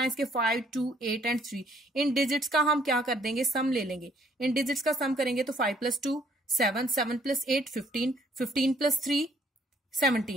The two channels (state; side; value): normal; both; correlation 0.63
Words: इसके, 5 2 8 एंड 3। इन डिजिट्स का हम क्या कर देंगे, सम ले लेंगे। इन डिजिट्स का सम करेंगे तो 5 + 2 7, 7 + 8 15, 15 + 3